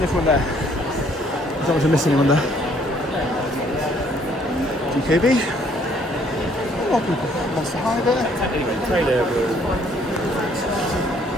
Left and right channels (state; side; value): normal; both; correlation 0.63